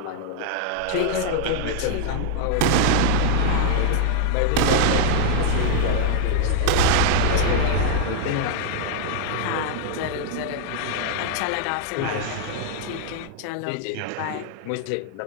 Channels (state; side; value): different; both; correlation 0.00